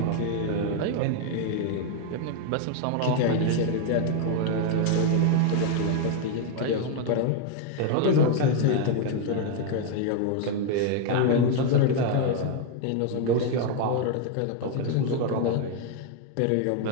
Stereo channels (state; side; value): different; both; correlation 0.00